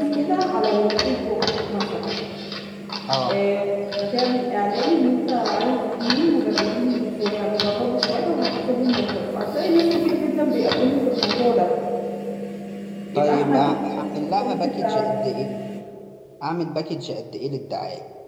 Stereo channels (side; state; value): both; identical; correlation 1.00